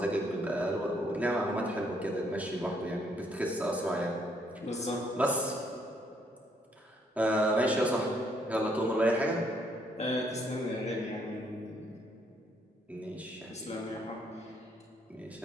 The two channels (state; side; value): normal; both; correlation 0.70